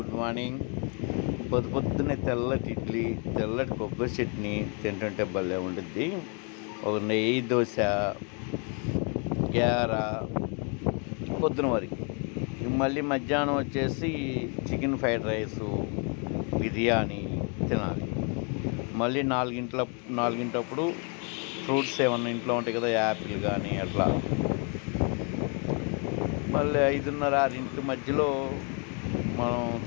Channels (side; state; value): right; quieter; 37.2 dB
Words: morning. పొద్దున్నే తెల్లటి ఇడ్లీ, తెల్లటి కొబ్బరి చట్నీ తింటుంటే భలే ఉండిద్ది. ఒక నెయ్యి దోశ, గార పొద్దున వరకు. మళ్ళీ మధ్యాహ్నం వచ్చేసి చికెన్ ఫ్రైడ్ రైసు, బిర్యానీ తినాలి. మళ్ళీ నాలుగింటప్పుడు ఫ్రూట్స్ ఏమన్నా ఇంట్లో ఉంటాయి కదా, యాపిల్ కానీ అట్లా. మళ్ళీ 5:30, 6 మధ్యలో మనం